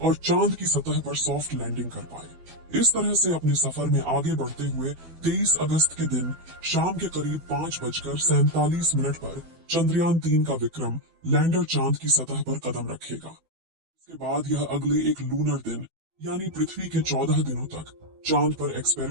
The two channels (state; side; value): late; left; 12 ms